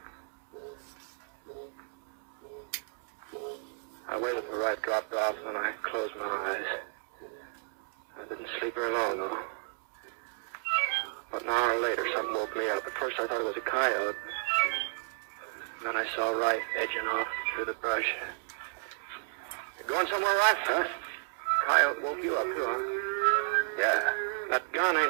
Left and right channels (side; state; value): left; silent; digital silence